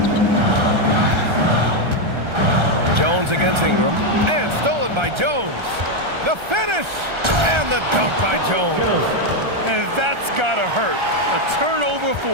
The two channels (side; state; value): left; late; 1.3 ms